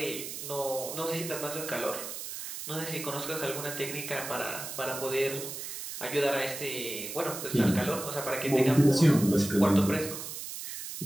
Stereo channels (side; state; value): right; noise; hiss, 8 dB below the sound